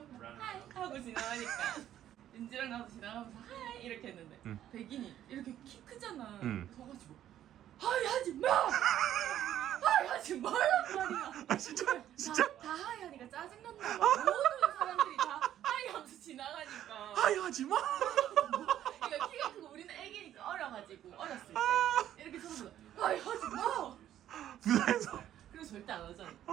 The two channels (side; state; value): left; quieter; 11.5 dB